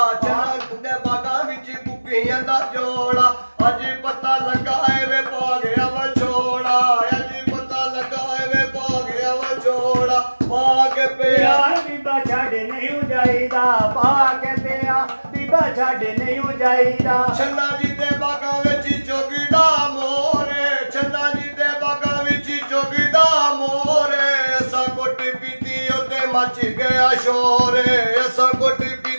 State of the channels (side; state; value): both; inverted; correlation -1.00